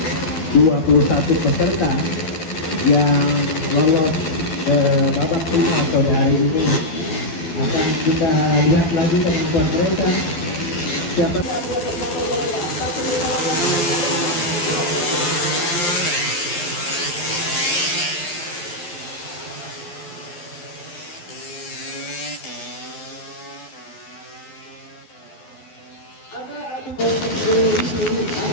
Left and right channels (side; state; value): right; late; 12 ms